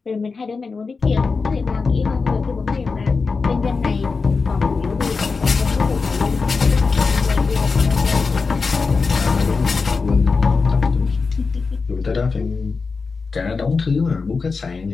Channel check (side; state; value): right; quieter; 4.6 dB